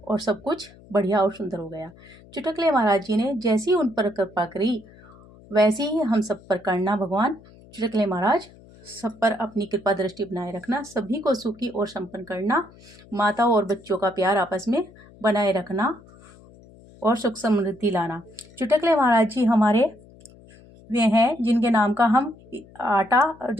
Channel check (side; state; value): left; noise; hum, 24 dB below the sound